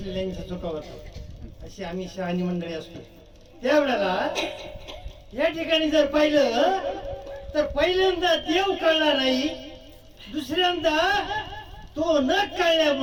चुका होतात. अशी आम्ही शहाणी मंडळी असतो. त्यावेळेला या ठिकाणी जर पाहिलं तर पहिल्यांदा देव कळला नाही, दुसऱ्यांदा तो न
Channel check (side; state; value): both; identical; correlation 1.00